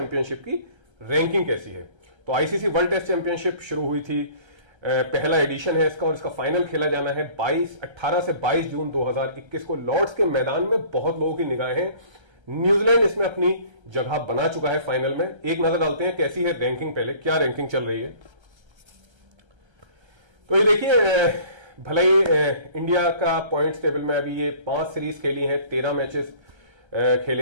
की रैंकिंग कैसी है। तो आईसीसी वर्ल्ड टेस्ट चैंपियनशिप शुरू हुई थी, पहला एडिशन है इसका और इसका फाइनल खेला जाना है 18 से 22 जून 2021 को लॉर्ड्स के मैदान में। बहुत लोगों की निगाहें हैं, न्यूजीलैंड इसमें अपनी जगह बना चुका है फाइनल में। एक नजर डालते हैं कैसी है रैंकिंग, पहले क्या रैंकिंग चल रही है। तो ये देखिए, भले ही इंडिया का पॉइंट्स टेबल में अभी ये 5 सीरीज खेली हैं, 13 मैचेस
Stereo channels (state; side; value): late; left; 1.3 ms